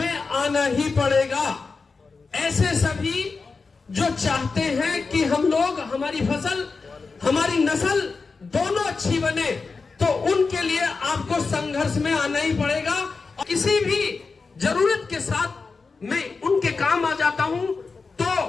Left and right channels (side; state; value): right; quieter; 4.4 dB